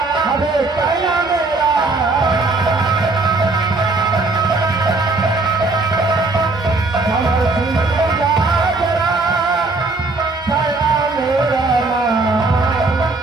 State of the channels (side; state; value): left; quieter; 3.5 dB